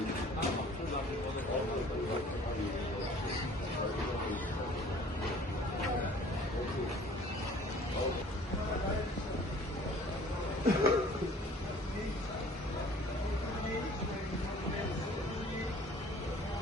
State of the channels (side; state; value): both; normal; correlation 0.51